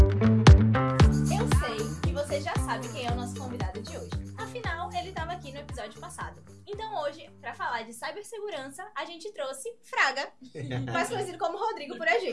que você já sabe quem é o nosso convidado de hoje. Afinal, ele estava aqui no episódio passado. Então hoje, para falar de cibersegurança, a gente trouxe Fraga, mais conhecido como Rodrigo por a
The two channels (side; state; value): both; identical; correlation 1.00